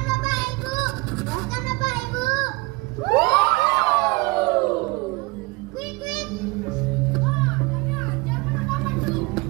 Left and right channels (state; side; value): quieter; left; 24.8 dB